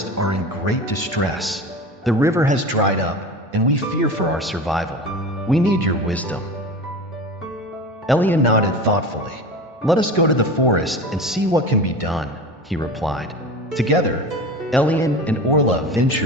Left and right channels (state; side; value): normal; both; correlation 0.32